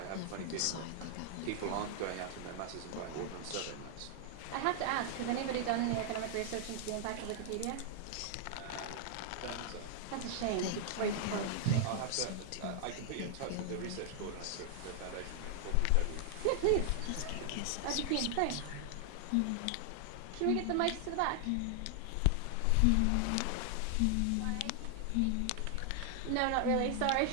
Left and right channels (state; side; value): different; both; correlation 0.00